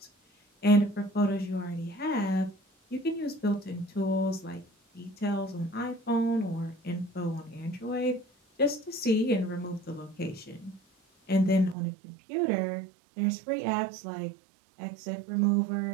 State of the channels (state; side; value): drops out; left; at 11.8 s